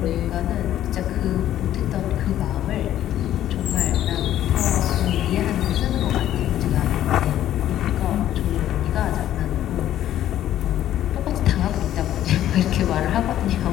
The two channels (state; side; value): quieter; right; 12.2 dB